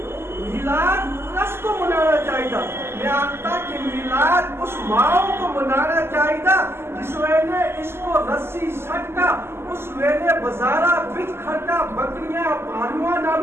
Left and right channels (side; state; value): left; late; 0.12 ms